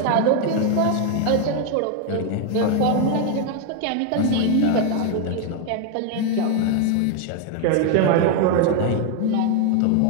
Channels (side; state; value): both; different; correlation 0.01